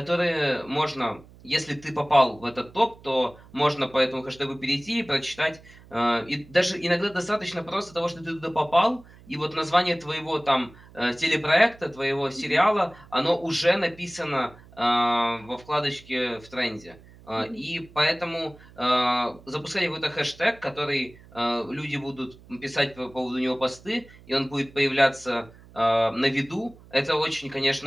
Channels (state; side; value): noise; right; hum, 23 dB below the sound